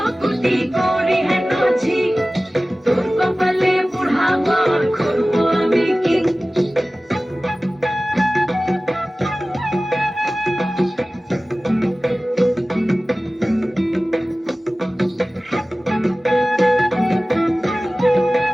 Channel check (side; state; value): both; normal; correlation 0.97